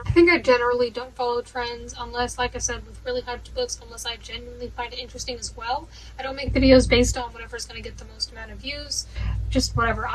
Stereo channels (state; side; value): identical; both; correlation 1.00